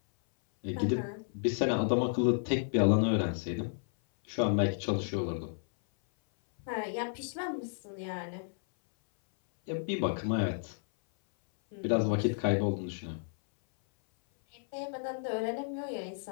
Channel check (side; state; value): right; silent; 56 dB below the other